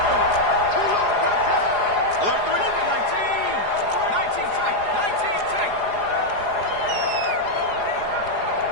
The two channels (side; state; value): left; late; 4.8 ms